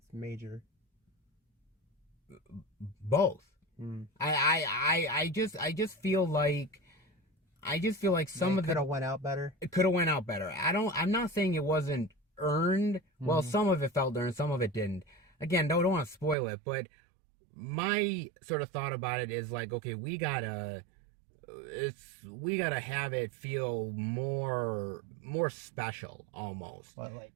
major. Both. I just feel like some of could have went out better. It could have went out better. I'm not saying it wasn't earned. Well, some of it felt earned, some of it didn't. Again, don't want to spoil it, but my sort of thought about it is like, okay, we gotta have it feel more special, almost. But like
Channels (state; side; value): drops out; left; at 16.4 s